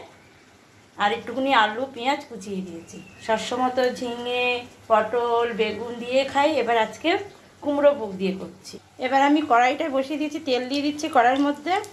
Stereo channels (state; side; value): identical; both; correlation 1.00